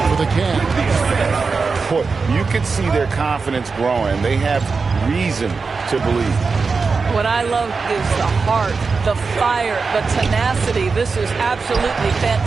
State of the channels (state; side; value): quieter; left; 4.6 dB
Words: the Cavs. Boy, you can see their confidence growing. They have reason to believe. What I love is the heart, the fire, the tenacity. This is absolutely